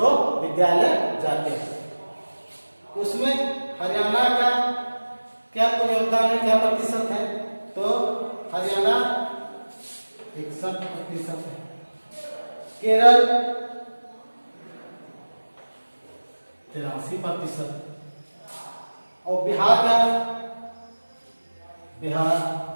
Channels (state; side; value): inverted; both; correlation -1.00